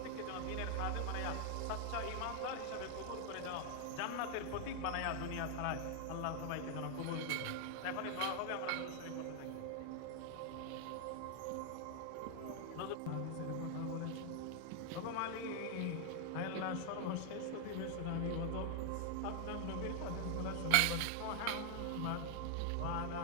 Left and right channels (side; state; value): both; different; correlation 0.00